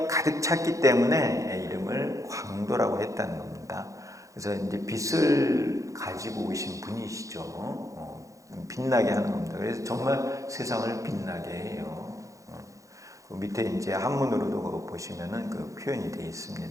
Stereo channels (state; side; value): late; left; 0.16 ms